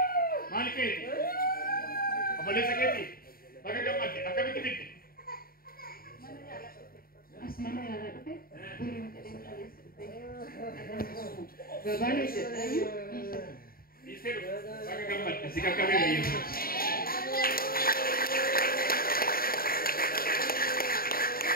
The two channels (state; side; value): late; right; 0.43 ms